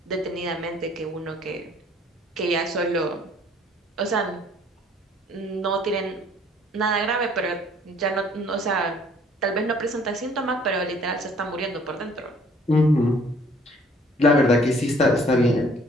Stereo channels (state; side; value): normal; both; correlation 0.57